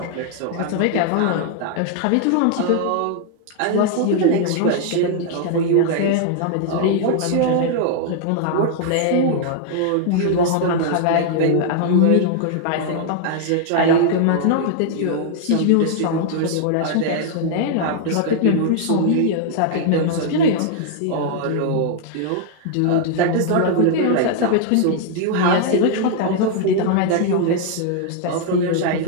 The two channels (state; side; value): different; both; correlation 0.00